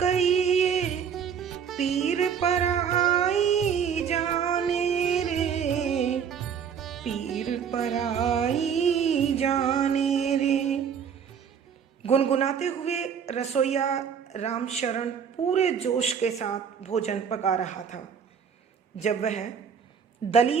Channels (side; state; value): left; quieter; 7.4 dB